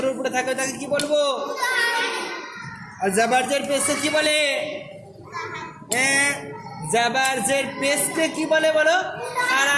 উপরে থাকে তাকে কি বলবো? আর জাবার জের পেশকে কি বলে? জাবার জের পেশকে কি বলে বলো?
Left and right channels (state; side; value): identical; both; correlation 1.00